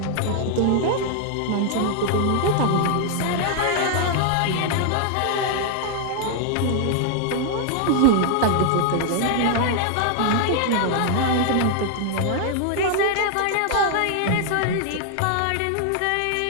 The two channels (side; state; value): both; different; correlation 0.00